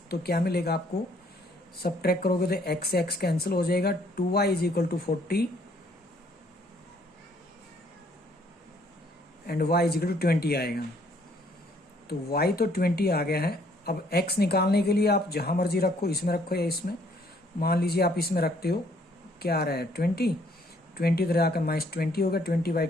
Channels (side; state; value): both; normal; correlation 0.64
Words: क्या मिलेगा आपको, सबट्रैक्ट करोगे तो एक्स एक्स कैंसिल हो जाएगा, 2y = 40 एंड y = 20 आएगा। तो y तो 20 आ गया है। अब x निकालने के लिए आप जहां मर्जी रखो, इसमें रखो या इसमें, मान लीजिए आप इसमें रखते हो, क्या आ रहा है 20 इधर आकर -20 होगा,